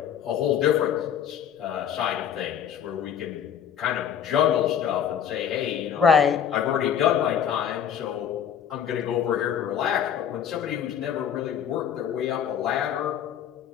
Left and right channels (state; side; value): quieter; right; 8.9 dB